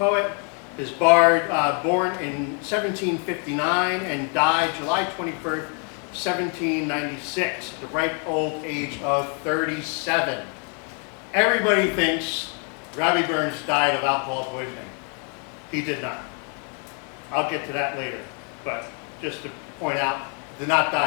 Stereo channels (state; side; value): quieter; right; 39.8 dB